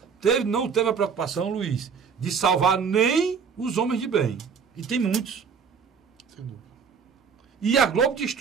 não teve a preocupação, Luiz, de salvar nem os homens de bem. E tem muitos. Sem dúvida. E a Globo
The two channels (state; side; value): quieter; left; 6.3 dB